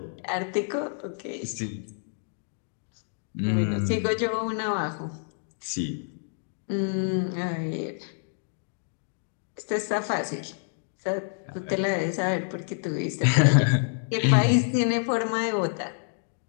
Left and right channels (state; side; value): silent; right; digital silence